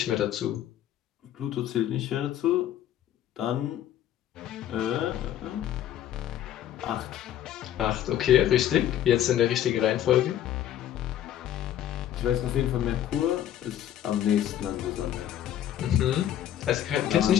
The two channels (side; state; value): right; quieter; 11.3 dB